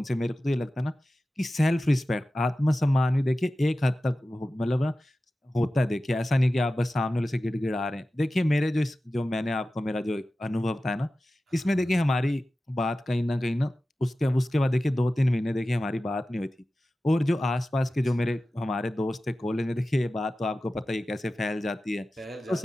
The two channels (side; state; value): both; normal; correlation 0.95